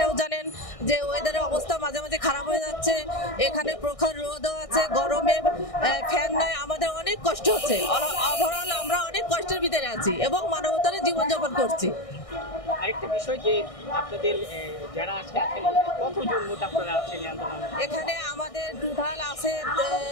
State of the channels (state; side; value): late; right; 1.6 ms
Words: জানেন যে ওয়েদারের অবস্থা মাঝে মাঝে খারাপ হয়ে যাচ্ছে। এখানে প্রখর রোদও আছে, গরমে ফ্যান নাই, আমাদের অনেক কষ্ট হচ্ছে। ওভারঅল আমরা অনেক কষ্টের ভিতরে আছি এবং মানবতার জীবনযাপন করছি। আরেকটা বিষয় যে আপনাদের যারা আজকে আছেন কতজন মোট আপনারা আছেন আন্দোলনে? এখানে আমাদের টোটাল আছে